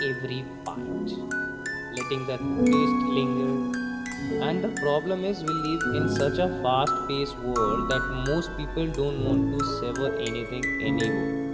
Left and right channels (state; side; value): identical; both; correlation 1.00